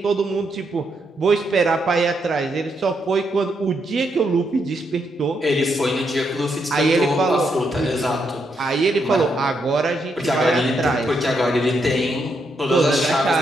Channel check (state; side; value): normal; both; correlation 0.79